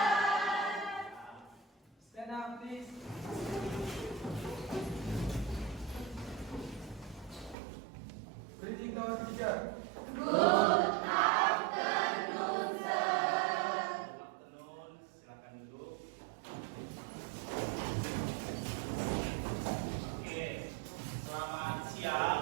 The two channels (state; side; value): drops out; left; at 7.6 s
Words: Stand up, please. Greeting to our teacher. Good afternoon, sir. Good afternoon. Silakan duduk. Oke. Selamat